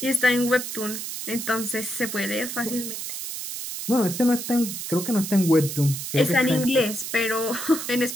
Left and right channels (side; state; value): right; noise; hiss, 6 dB below the sound